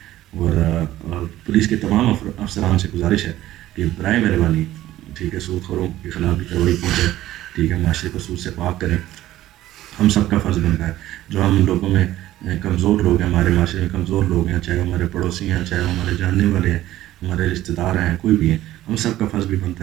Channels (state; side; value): quieter; left; 14.5 dB